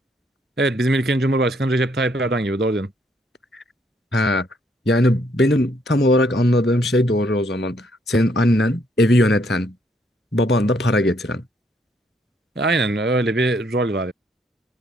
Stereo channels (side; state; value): both; normal; correlation 0.70